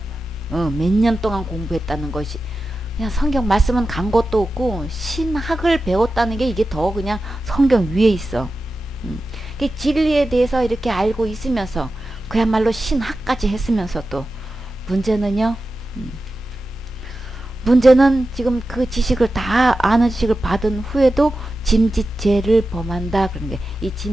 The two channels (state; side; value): normal; both; correlation 0.93